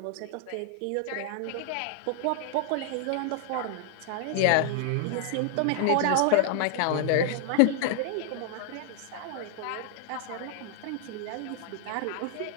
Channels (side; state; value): both; different; correlation 0.00